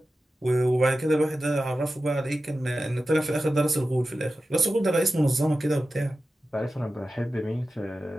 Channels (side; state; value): both; normal; correlation 0.93